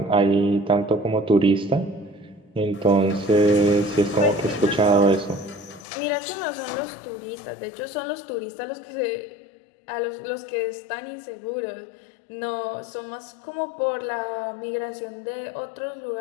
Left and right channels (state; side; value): drops out; right; at 5.9 s